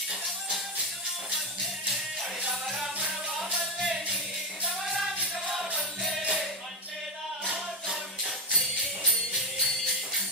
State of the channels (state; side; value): normal; both; correlation 0.08